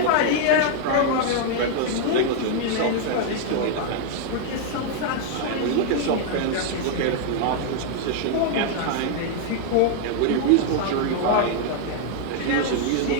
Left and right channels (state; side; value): different; both; correlation 0.00